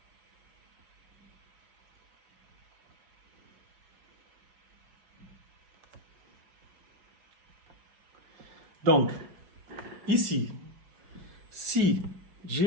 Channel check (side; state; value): left; late; 5.3 ms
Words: Donc, ici, si